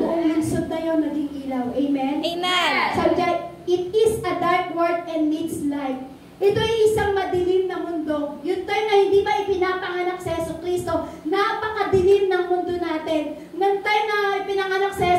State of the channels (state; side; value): identical; both; correlation 1.00